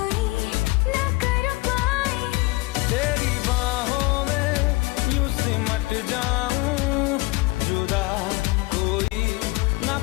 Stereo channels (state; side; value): quieter; right; 23.1 dB